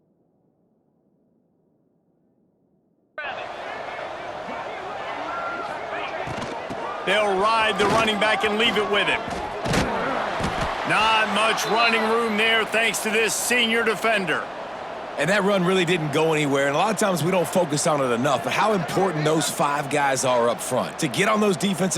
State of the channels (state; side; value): identical; both; correlation 1.00